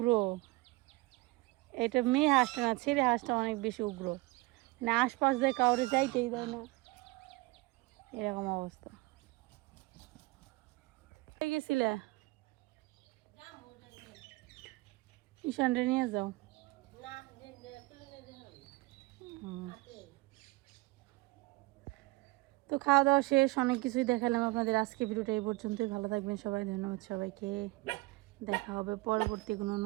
এটা মেয়ে হাঁসটা না ছেলে হাঁসটা অনেক বেশি উগ্র না আশপাশ দিয়ে কাউরে যাইতেই দেয় না এরকম অবস্থা গেছিলে ঈশানরে নিয়ে যাও তো খাওয়া দাওয়া শেষ অনেক কিছুই দেখালাম আপনাদের আজকে ভিডিওটা এই পর্যন্তই ভালো থাকবেন সবাই ধন্যবাদ সবাইকে দেখা হবে পরবর্তী কোনো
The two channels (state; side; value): quieter; left; 23.0 dB